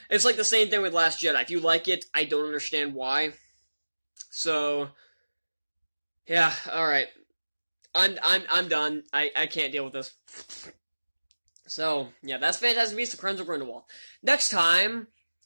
It's like the same thing with Last Jedi. If you like it, I don't understand why. So, yeah, alright. I'm done. I can't deal with this. So, yeah, that's Fantastic Beasts: The Crimes of Grindelwald. Next time,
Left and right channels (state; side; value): inverted; both; correlation -1.00